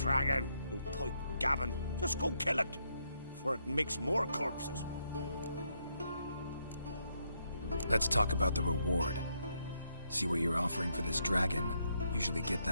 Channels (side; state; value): both; inverted; correlation -0.77